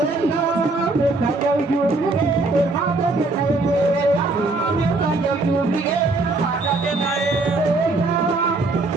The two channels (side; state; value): left; quieter; 3.2 dB